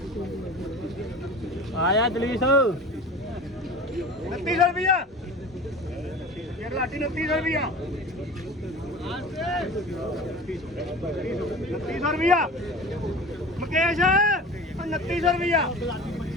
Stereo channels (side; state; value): both; normal; correlation 0.37